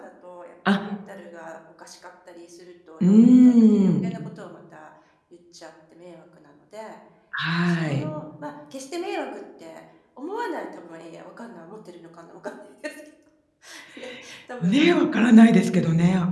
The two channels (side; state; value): both; identical; correlation 1.00